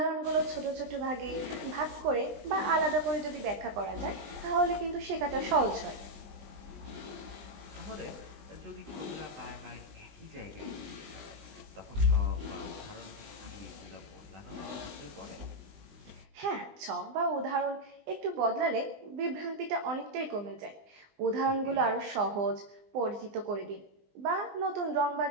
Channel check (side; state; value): left; late; 20 ms